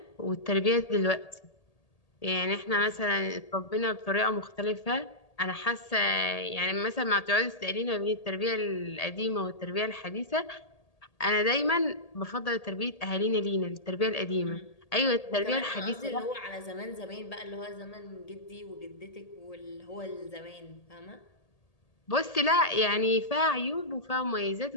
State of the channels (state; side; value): late; right; 1.8 ms